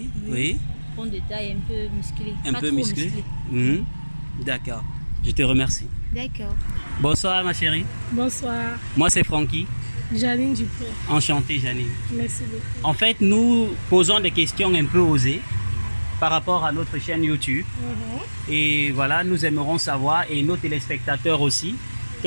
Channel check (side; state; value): both; inverted; correlation -1.00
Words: Oui. Grande de taille, un peu musclé. Un Pas peu trop musclé. Mhm. D'accord. Je te remercie. D'accord. Bonsoir, ma chérie. Bonsoir. Moi, c'est Francky. Janine Dupont. Enchanté, Janine. Merci beaucoup. En fait, nous posons des questions un peu osées par rapport à notre chaîne YouTube. Et voilà, nous aimerons savoir, et nos téléspectateurs aussi,